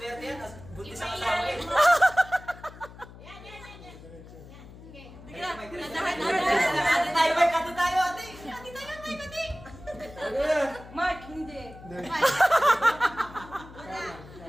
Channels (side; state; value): left; noise; hum, 18 dB below the sound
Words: yan. Buntis ang asawa eh. Sige lang. Dandan. Ate tayo, Mike. Ate tayo, ate. Ate tayo, Mike, ate. Mark, hindi.